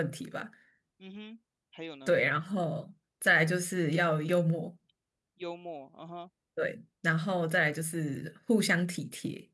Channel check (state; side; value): identical; both; correlation 1.00